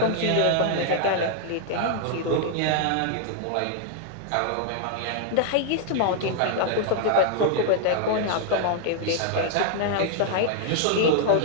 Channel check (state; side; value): different; both; correlation 0.00